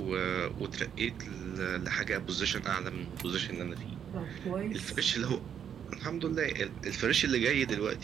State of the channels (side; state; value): left; quieter; 8.5 dB